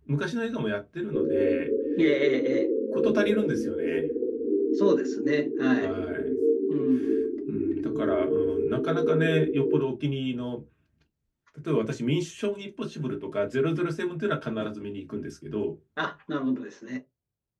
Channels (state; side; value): identical; both; correlation 1.00